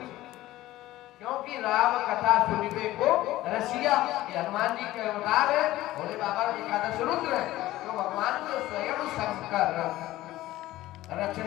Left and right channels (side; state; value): right; quieter; 16.2 dB